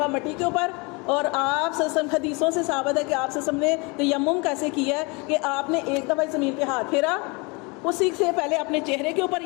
مٹی کے اوپر، اور آپ سے حدیثوں سے ثابت ہے کہ آپ سے نے تیمم کیسے کیا ہے کہ آپ نے ایک دفعہ زمین پہ ہاتھ پھیرا، اسی سے پہلے اپنے چہرے کے اوپر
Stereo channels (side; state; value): right; quieter; 28.9 dB